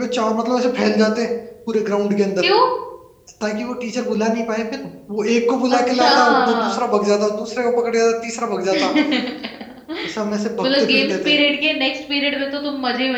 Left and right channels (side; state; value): both; identical; correlation 1.00